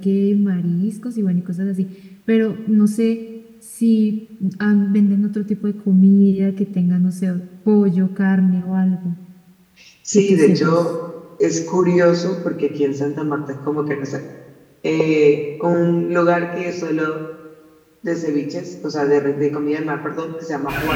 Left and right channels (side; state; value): both; identical; correlation 1.00